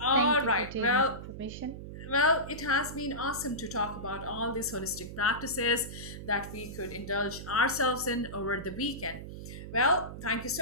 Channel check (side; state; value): right; noise; hum, 10 dB below the sound